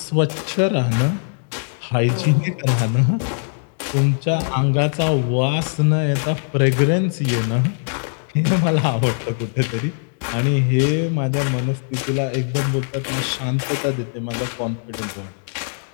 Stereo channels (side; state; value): right; silent; digital silence